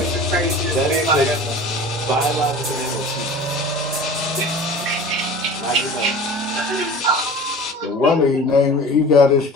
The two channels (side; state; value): both; normal; correlation 0.39